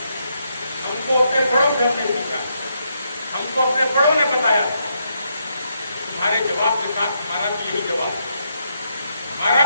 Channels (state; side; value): inverted; both; correlation -0.78